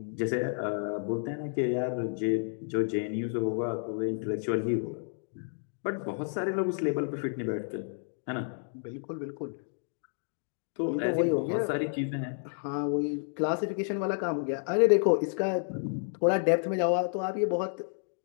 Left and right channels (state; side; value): silent; right; digital silence